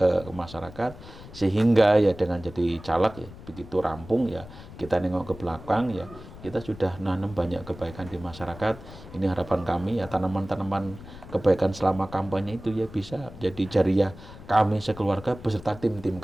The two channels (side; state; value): left; noise; rumble, 16 dB below the sound